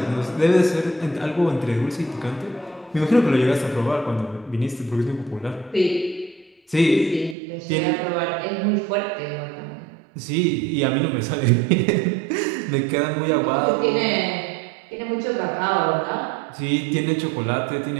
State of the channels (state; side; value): drops out; left; at 7.4 s